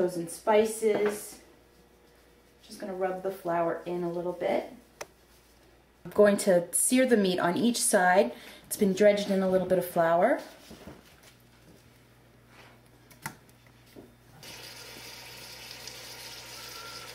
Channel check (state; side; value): identical; both; correlation 1.00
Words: spices. Just going to rub the flour in a little bit. I'm going to sear the meat on each side. It's been dredged in a little bit of flour.